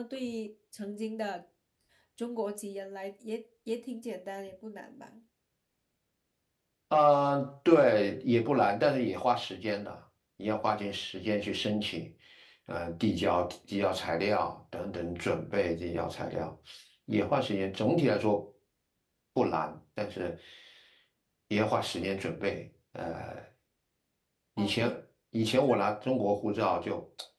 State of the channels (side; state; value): both; identical; correlation 1.00